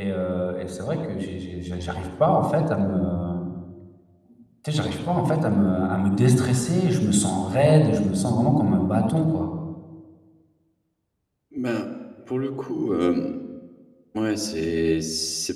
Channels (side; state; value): both; identical; correlation 1.00